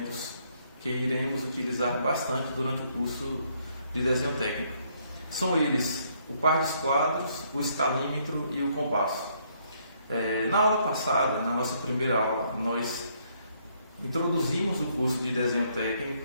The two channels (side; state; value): both; inverted; correlation -0.70